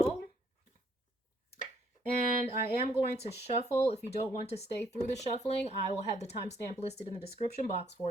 And I am going to shuffle. If you don't want to stay through the shuffling, I will have the timestamp listed in the description box for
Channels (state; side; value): normal; both; correlation 0.67